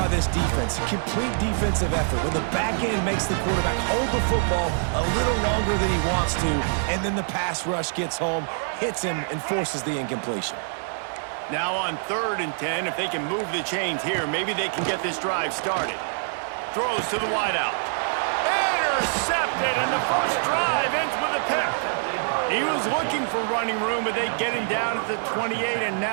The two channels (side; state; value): left; silent; digital silence